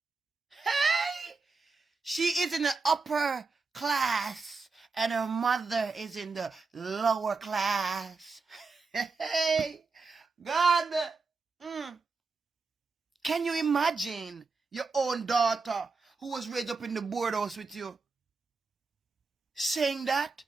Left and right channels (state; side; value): quieter; left; 4.3 dB